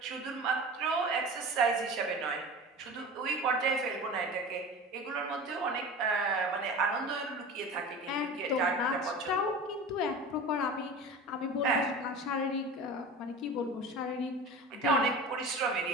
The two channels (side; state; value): both; normal; correlation 0.34